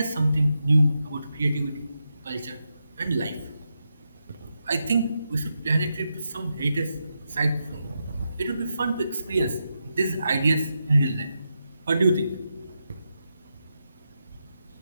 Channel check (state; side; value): inverted; both; correlation -0.86